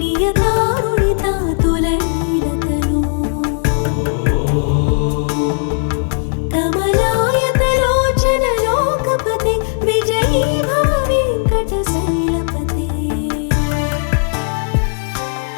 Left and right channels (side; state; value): right; silent; 69 dB below the other